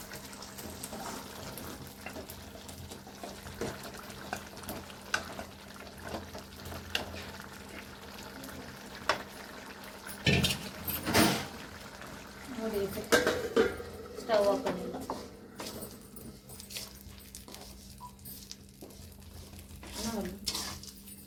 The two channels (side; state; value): both; identical; correlation 1.00